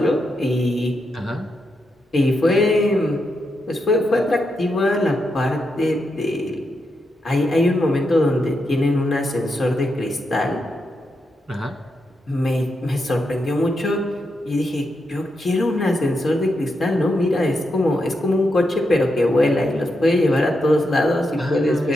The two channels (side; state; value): both; normal; correlation 0.84